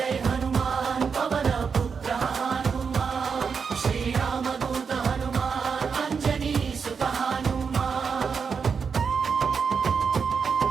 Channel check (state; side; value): quieter; left; 5.9 dB